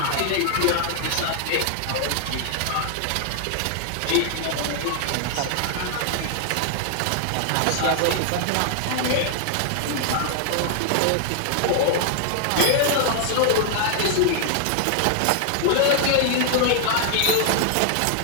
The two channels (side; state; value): both; different; correlation 0.00